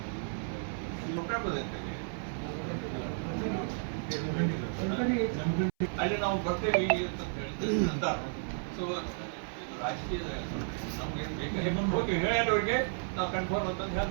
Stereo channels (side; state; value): left; silent; 56 dB below the other